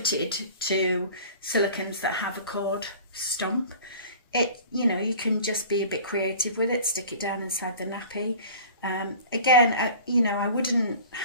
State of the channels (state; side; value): inverted; both; correlation -0.43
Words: to silicones that have a cord stump. You can just be a bit creative with it, stick it down inside the nappy. Again, I wouldn't